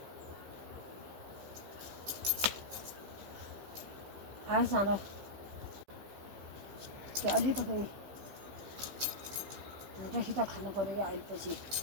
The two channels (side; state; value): left; late; 15 ms